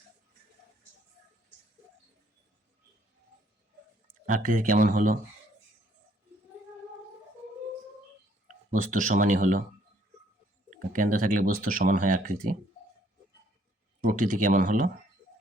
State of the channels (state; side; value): normal; both; correlation 0.65